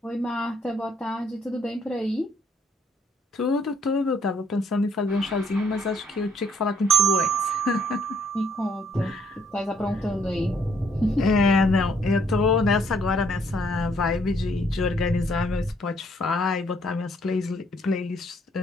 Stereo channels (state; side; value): normal; both; correlation 0.66